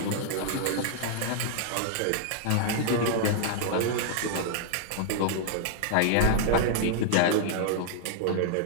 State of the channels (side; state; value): both; different; correlation -0.01